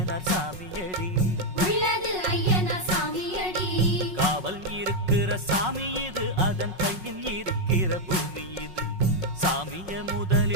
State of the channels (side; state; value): left; late; 5.5 ms